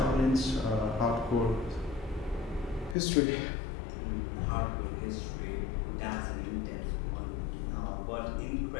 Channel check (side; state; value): right; drops out; at 3.0 s